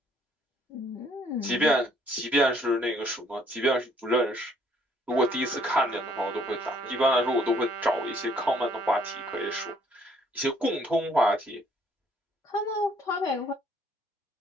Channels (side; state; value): both; normal; correlation 0.63